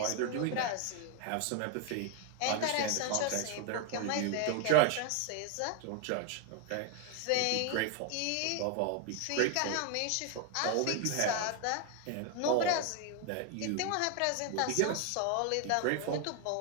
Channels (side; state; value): both; different; correlation 0.01